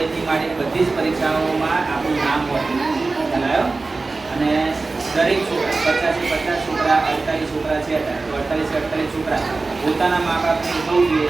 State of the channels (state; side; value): quieter; left; 3.6 dB